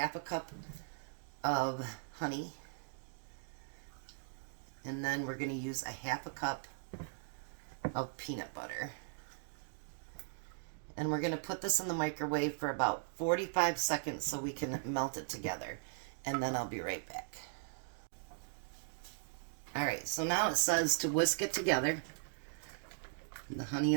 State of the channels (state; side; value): silent; left; digital silence